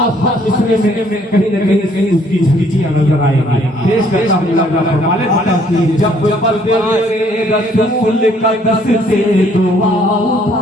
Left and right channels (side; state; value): both; normal; correlation 0.63